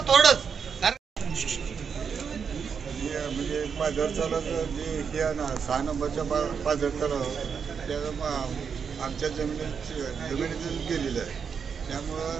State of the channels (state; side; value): quieter; left; 6.5 dB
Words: थोडंच, म्हणजे पाझर तलाव जे हे आहे ना 6 नंबरच्या पाझर तलाव त्या आमच्या जमिनीतून केलेलं आहे,